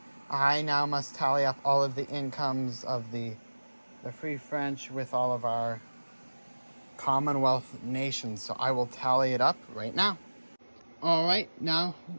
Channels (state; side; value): inverted; both; correlation -1.00